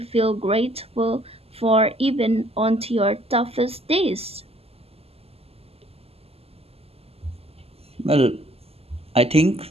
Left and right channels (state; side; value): late; left; 0.29 ms